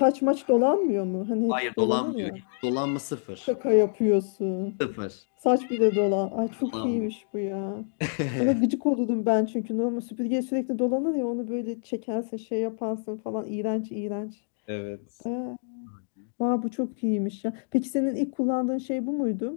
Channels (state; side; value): silent; right; digital silence